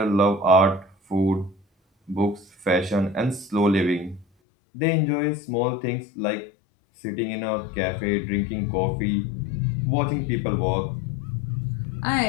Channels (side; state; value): right; drops out; at 4.2 s